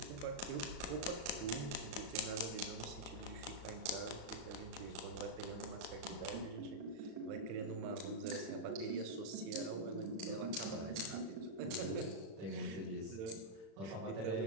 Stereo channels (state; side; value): late; left; 36 ms